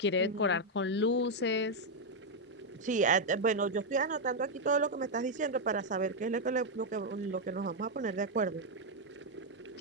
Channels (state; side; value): normal; both; correlation 0.00